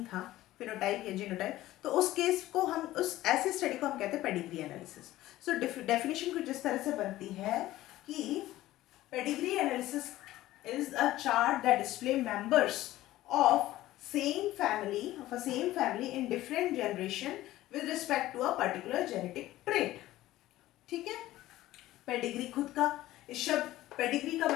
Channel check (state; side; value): quieter; right; 15.7 dB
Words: था, फिनोटाइप या जीनोटाइप, तो उस केस को हम, उस ऐसे स्टडी को हम कहते हैं पेडिग्री एनालिसिस। सो डेफिनेशन कुछ इस तरह से बनती है कि pedigree analysis is a chart that display members of same family in different generation with respect to a particular genetic trait। ठीक है। पेडिग्री खुद का, इस शब्द पेडिग्री का